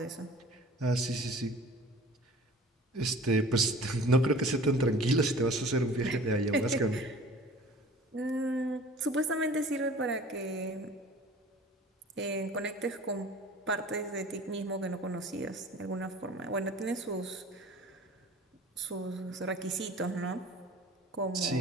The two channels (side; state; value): both; normal; correlation 0.45